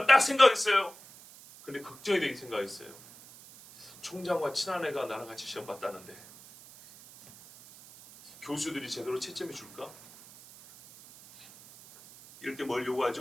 딱 생각했어요. 근데 걱정이 되게 생각했어요. 총장과 친한 애가 나랑 같이 시험 봤다는데 교수들이 제대로 채점해 줄까? 이럴 때 뭘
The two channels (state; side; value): noise; right; hiss, 20 dB below the sound